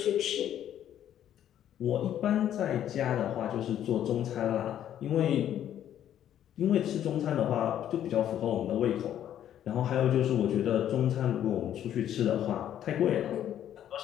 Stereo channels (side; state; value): right; quieter; 10.8 dB